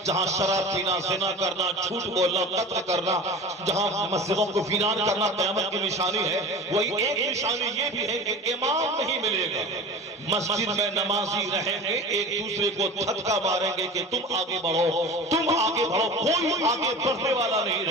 جہاں شراب پینا، زنا کرنا، جھوٹ بولنا، قتل کرنا، جہاں مسجدوں کو ویران کرنا قیامت کی نشانی ہے، وہی ایک نشانی یہ بھی ہے کہ امام نہیں ملے گا۔ مسجد میں نمازی رہیں گے، ایک دوسرے کو دھکا ماریں گے کہ تم آگے بڑھو، تم آگے بڑھو، کوئی آگے بڑھنے والا نہیں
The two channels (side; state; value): both; normal; correlation 0.36